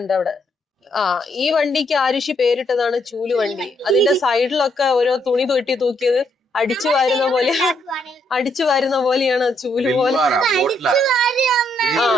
അവിടെ. ഈ വണ്ടിക്ക് ആരുഷി പേരിട്ടതാണ് ചൂല് വണ്ടി. അതിന്റെ സൈഡിലൊക്കെ ഓരോ തുണി തൊട്ടി തൂക്കിയത് അടിച്ചു വാരുന്ന പോലെയാണ് ചൂല് പോലെ.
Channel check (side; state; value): both; normal; correlation 0.74